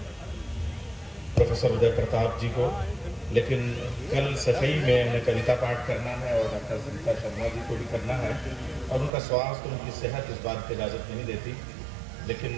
प्रोफेसर उदय प्रताप जी को, लेकिन कल सफाई में उन्हें कविता पाठ करना है और डॉक्टर सुनीता शर्मा जी को भी करना है और उनका स्वास्थ्य, उनकी सेहत इस बात की इजाज़त नहीं देती। लेकिन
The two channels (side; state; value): left; drops out; at 9.1 s